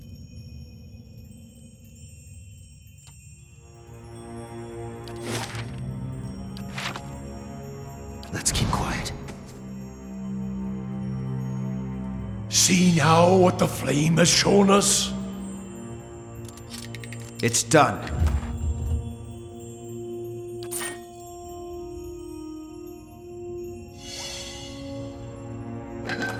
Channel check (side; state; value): both; identical; correlation 1.00